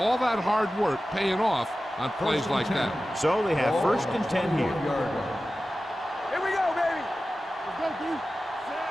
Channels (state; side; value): normal; both; correlation 0.95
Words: that hard work paying off on plays like that. So they have 1st and 10 here. Here we go, baby. Let's go, dude.